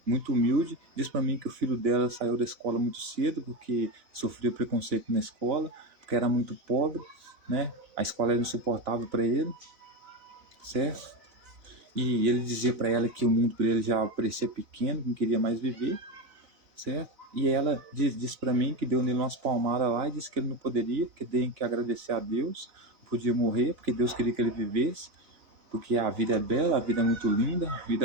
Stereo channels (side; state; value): left; late; 4.0 ms